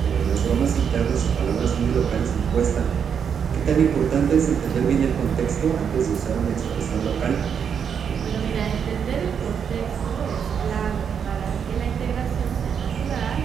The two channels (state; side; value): quieter; left; 7.4 dB